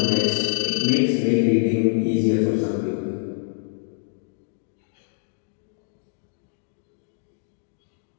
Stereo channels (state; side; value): silent; right; digital silence